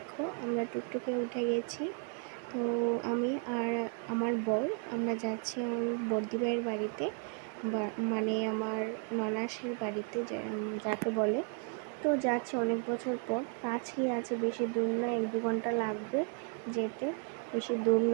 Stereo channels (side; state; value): left; quieter; 38.8 dB